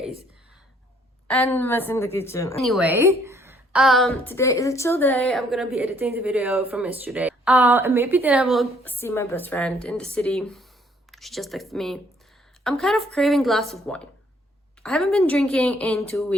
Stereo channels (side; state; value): both; normal; correlation 0.64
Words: And mess in the kitchen. Anyway, today is a chill day. I'm gonna be editing the video from yesterday. And maybe then I will see my best friend in the city. She just texted me. I'm kind of craving a glass of wine. I haven't been drinking in 2